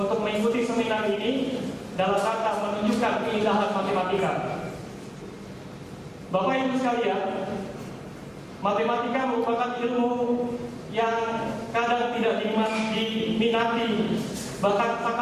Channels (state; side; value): identical; both; correlation 1.00